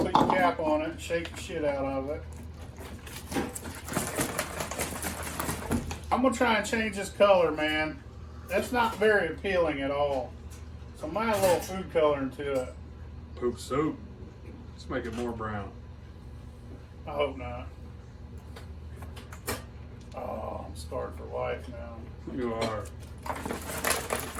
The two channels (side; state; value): both; identical; correlation 1.00